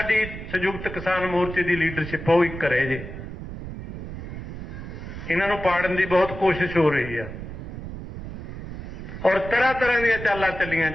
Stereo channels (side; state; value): right; noise; rumble, 9 dB below the sound